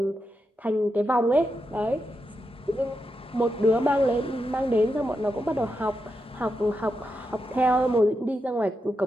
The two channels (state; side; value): normal; both; correlation 0.86